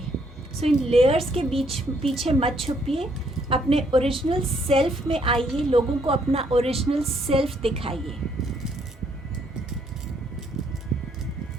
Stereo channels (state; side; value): normal; both; correlation 0.69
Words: सो इन लेयर्स के पीछे मत छुपिए, अपने ओरिजिनल सेल्फ में आइए, लोगों को अपना ओरिजिनल सेल्फ दिखाइए।